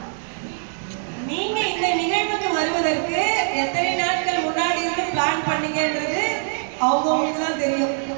நீங்க இந்த நிகழ்வுக்கு வருவதற்கு எத்தனை நாட்கள் முன்னாடி இருந்து பிளான் பண்ணீங்கன்றது அவங்களுக்கு தான் தெரியும்.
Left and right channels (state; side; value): silent; left; 64 dB below the other